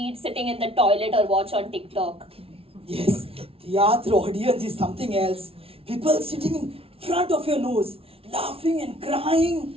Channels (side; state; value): left; late; 0.27 ms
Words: sitting in the toilet or watch on TikTok. Yes, theatre audience is something else. People sitting in front of your nose, laughing and crying.